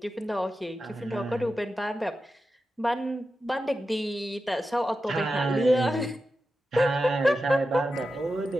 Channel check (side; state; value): both; normal; correlation 0.91